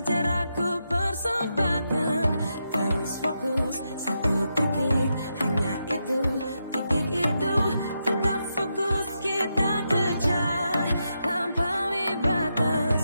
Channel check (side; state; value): both; inverted; correlation -0.85